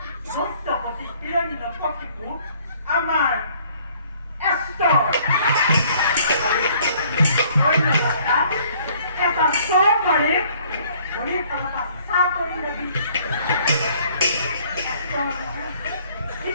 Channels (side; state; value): both; inverted; correlation -0.59